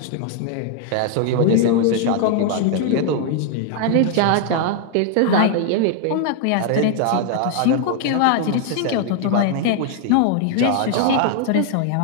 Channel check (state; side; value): different; both; correlation 0.00